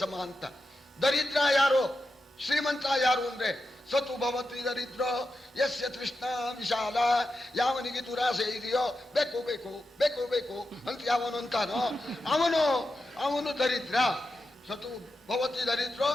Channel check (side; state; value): both; normal; correlation 0.89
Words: ಸಮ ಅಂತ. ದರಿದ್ರ ಯಾರು, ಶ್ರೀಮಂತ ಯಾರು ಅಂದ್ರೆ ಸತು ಭವತಿ ದರಿದ್ರೋ ಯಸ್ಯ ತೃಷ್ಣ ವಿಶಾಲ. ಯಾವನಿಗೆ ದುರಾಸೆ ಇದೆಯೋ ಬೇಕು ಬೇಕು ಬೇಕು ಬೇಕು ಅಂತ ಯಾವನು ಅಂತಾನೋ ಅವನು ದರಿದ್ರ. ಸತು ಭವತಿ ದರಿದ್ರೋ